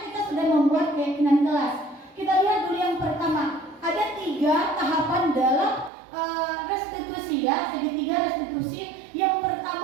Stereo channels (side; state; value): left; drops out; at 5.9 s